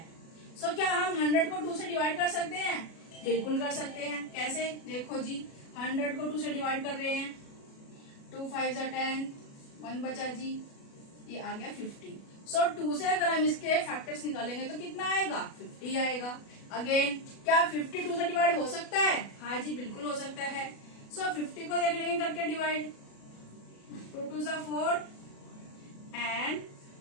सो क्या हम 100 को 2 से डिवाइड कर सकते हैं? बिल्कुल कर सकते हैं। कैसे? देखो जी, 100 को 2 से डिवाइड कर रहे हैं। 2 5 10, 1 बचा जी, ये आ गया 50। सो 2 से अगर हम इसके फैक्टर्स निकालेंगे तो कितना आएगा? 50 आएगा। अगेन क्या 50 2 से डिवाइड हो सकता है? हाँ जी बिल्कुल हो सकता है। सो 50 को देख लेंगे करके डिवाइड। 2 2 4 एंड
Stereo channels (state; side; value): late; right; 37 ms